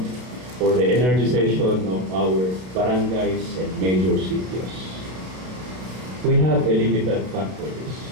or the energization of our barangays and major cities. We have a limited fund for this.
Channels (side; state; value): left; late; 32 ms